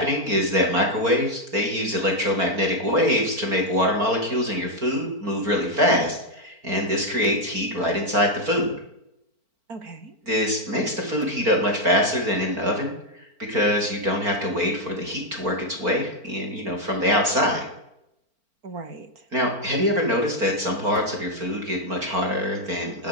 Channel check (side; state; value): left; late; 4.4 ms